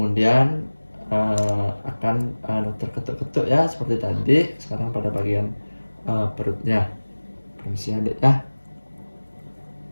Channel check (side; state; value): both; inverted; correlation -1.00